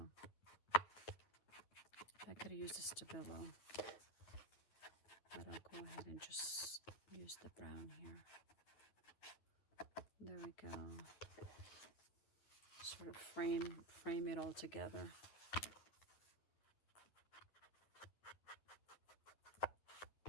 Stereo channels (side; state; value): right; late; 9.8 ms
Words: I could have used a Stabilo, but I'll go ahead and just use the brown here. There we go. Sort of frame it all together.